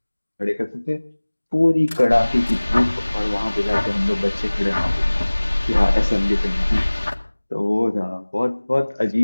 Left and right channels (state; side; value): inverted; both; correlation -1.00